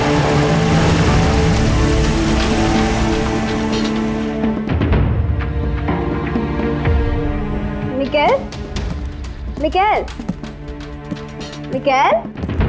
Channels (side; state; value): both; identical; correlation 1.00